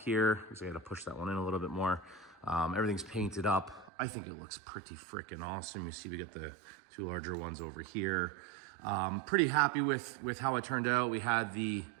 So I got to push that one in a little bit more. Everything's painted up. I think it looks pretty freaking awesome. You see we got the 2 larger ones over here. Pretty happy with how it turned out. We had the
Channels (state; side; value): drops out; left; at 3.9 s